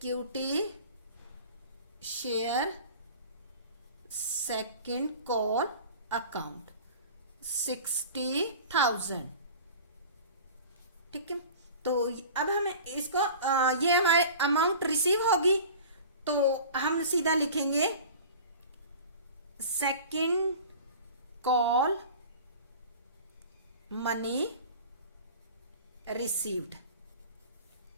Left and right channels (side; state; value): both; inverted; correlation -0.40